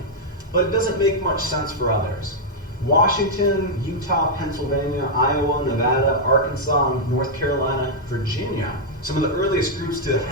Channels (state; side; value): normal; both; correlation -0.03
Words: but it doesn't make much sense for others. Washington, Utah, Pennsylvania, Iowa, Nevada, Arkansas, North Carolina, Virginia, some of the earliest groups to